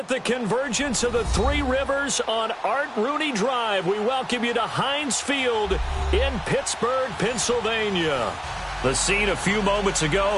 the convergence of the Three Rivers on Art Rooney Drive, we welcome you to Heinz Field in Pittsburgh, Pennsylvania. The scene a few moments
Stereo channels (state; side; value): identical; both; correlation 1.00